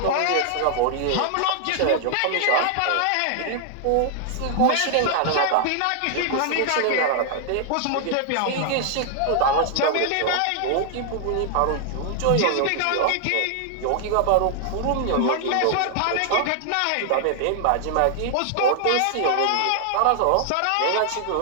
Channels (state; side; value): different; both; correlation 0.00